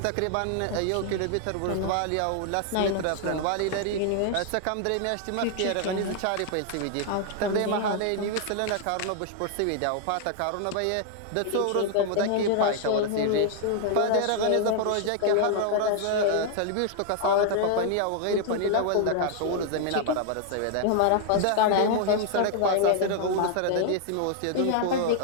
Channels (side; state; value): both; different; correlation 0.00